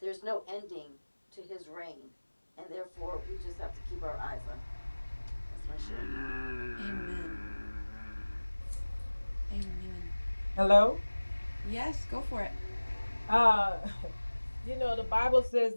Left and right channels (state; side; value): inverted; both; correlation -1.00